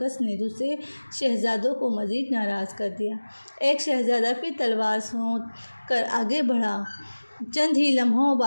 نے دوسرے شہزادوں کو مزید ناراض کر دیا۔ ایک شہزادہ پھر تلوار سونت کر آگے بڑھا، چند ہی لمحوں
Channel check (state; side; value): inverted; both; correlation -1.00